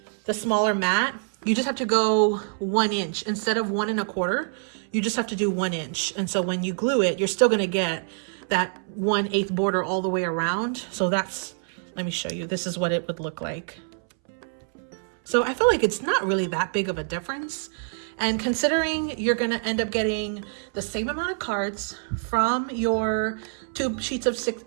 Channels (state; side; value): silent; left; 61 dB below the other